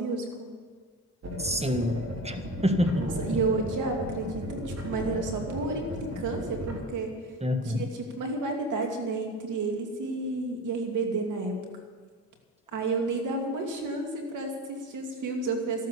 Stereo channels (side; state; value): both; normal; correlation 0.30